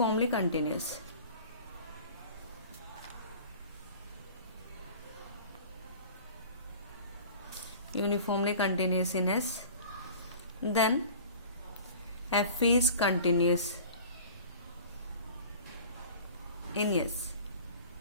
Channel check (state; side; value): inverted; both; correlation -0.43